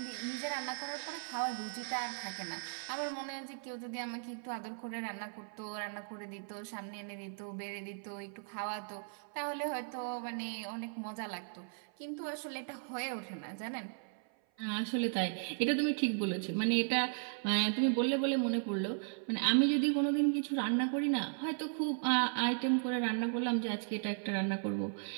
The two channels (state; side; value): silent; left; 53 dB below the other